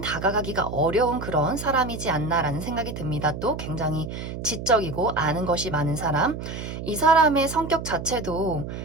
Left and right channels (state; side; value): noise; right; hum, 7 dB below the sound